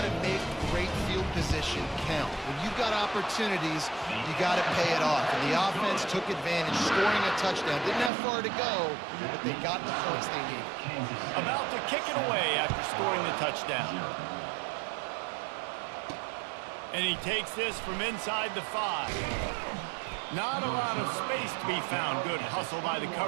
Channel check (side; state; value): left; drops out; at 8.1 s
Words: to make great field position count. When you've got opportunities, you got to pay it off. And the offense took advantage, scoring a touchdown. Didn't have far to go, but they got the points they needed. About to kick it away after scoring the touchdown. And he takes this from inside the 5. Not a lot of space to be found. Good hustle by the